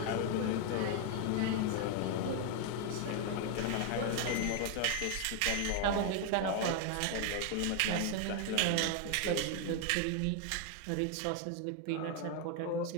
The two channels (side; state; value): both; different; correlation 0.01